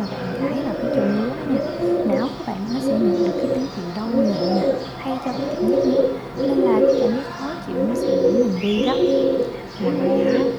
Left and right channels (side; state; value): both; identical; correlation 1.00